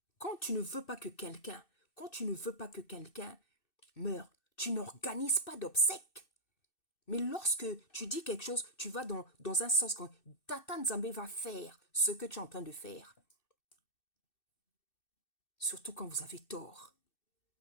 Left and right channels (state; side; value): late; right; 2.6 ms